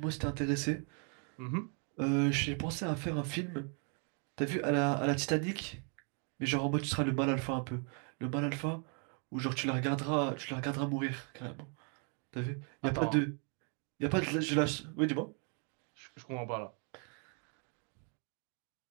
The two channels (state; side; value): quieter; left; 39.9 dB